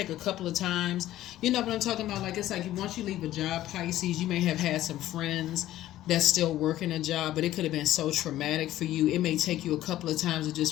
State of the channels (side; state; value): right; quieter; 14.0 dB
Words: take a couple of times. You know what I'm talking about? Like it's like once you leave a job, Pisces, you may have had some friends that's still working a job, but it could have been so traumatic for you. It may take you a couple of times of just